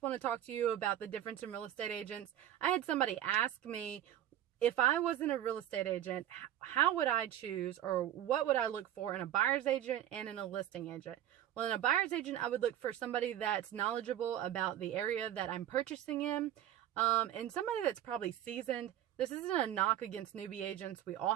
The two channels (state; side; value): quieter; left; 12.0 dB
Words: want to talk to you about the difference in real estate agents. I had somebody ask me, if I wasn't a real estate agent, how would I choose, or what would I look for in a buyer's agent and in a listing agent? Well, in a buyer's agent, I would look for somebody that's knowledgeable about the area that I'm purchasing in, and somebody that's probably seasoned. This isn't a knock against newbie agents. We